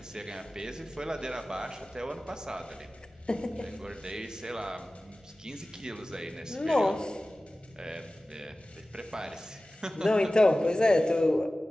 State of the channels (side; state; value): both; normal; correlation 0.96